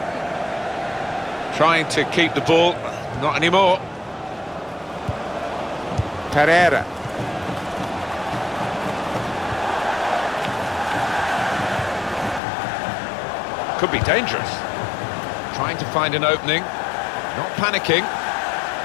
Trying to keep the ball. Not anymore. Pereira. Could be dangerous. Trying to find an opening. Not panicking.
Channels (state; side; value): drops out; right; at 12.4 s